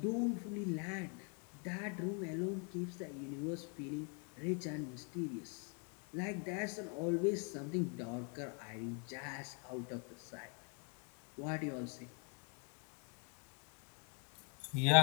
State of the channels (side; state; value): right; quieter; 37.2 dB